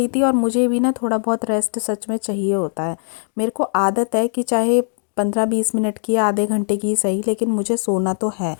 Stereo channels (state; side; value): silent; right; digital silence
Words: थी और मुझे भी ना थोड़ा बहुत रेस्ट सच में चाहिए होता है। मेरे को आदत है कि चाहे 15-20 मिनट की या आधे घंटे की सही, लेकिन मुझे सोना तो है।